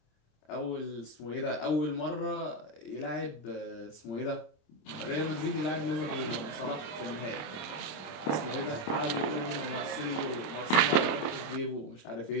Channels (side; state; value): right; late; 26 ms